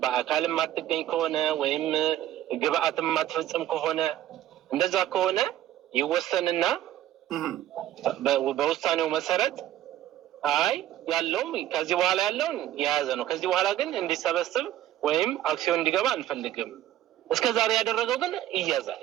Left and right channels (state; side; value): quieter; left; 12.8 dB